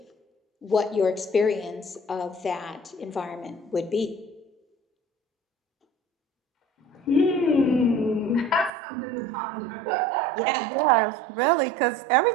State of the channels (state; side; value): drops out; left; at 8.7 s